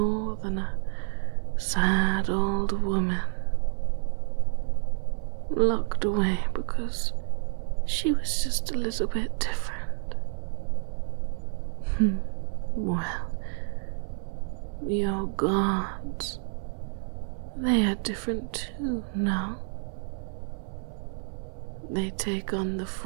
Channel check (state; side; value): silent; left; 59 dB below the other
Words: than a sad old woman, locked away because she was just a little bit different. Well, your gods, they are different too, no? They take on the